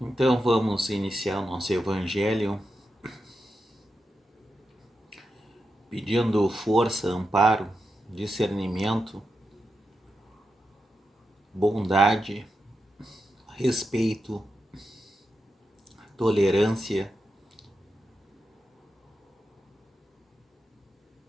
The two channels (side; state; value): both; normal; correlation 0.88